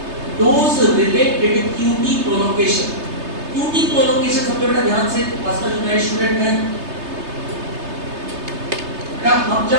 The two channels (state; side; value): late; left; 3.3 ms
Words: those related QT prolongation। QT prolongation समझो बेटा ध्यान से, खासकर जो नए स्टूडेंट हैं बेटा, हम